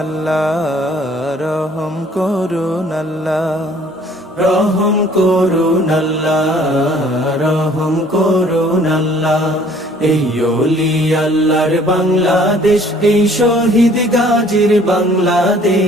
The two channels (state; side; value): normal; both; correlation 0.56